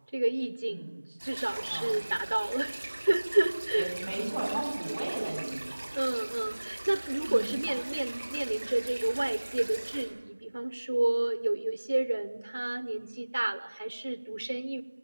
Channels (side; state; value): both; inverted; correlation -1.00